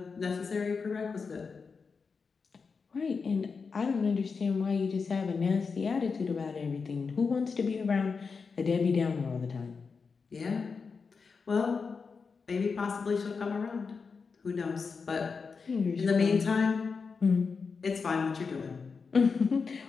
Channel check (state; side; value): quieter; right; 5.1 dB